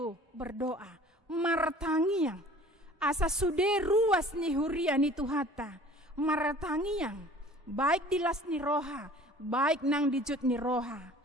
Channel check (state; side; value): normal; both; correlation 0.48